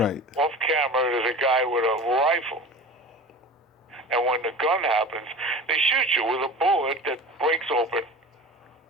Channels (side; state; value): both; normal; correlation 0.35